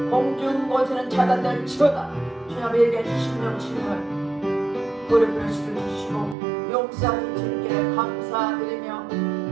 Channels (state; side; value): drops out; left; at 6.4 s